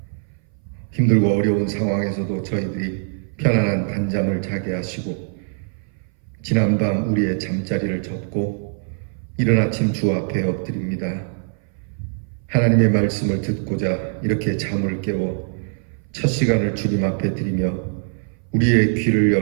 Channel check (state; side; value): silent; left; 60 dB below the other